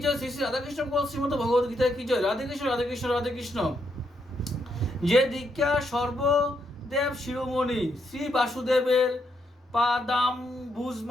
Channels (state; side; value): normal; both; correlation 0.78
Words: জয়, শ্রী রাধাকৃষ্ণ গোপাল শ্রীমদ ভগবদ গীতা কি জয়। রাধে কৃষ্ণ রাধে কৃষ্ণ রাধে কৃষ্ণ। যে দীক্ষা সর্বদেব শিরোমণি শ্রী বাসুদেবের পাদাম্বুজ